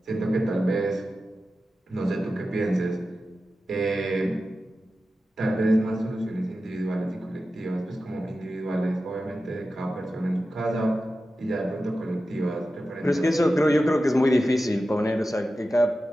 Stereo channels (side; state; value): both; normal; correlation 0.93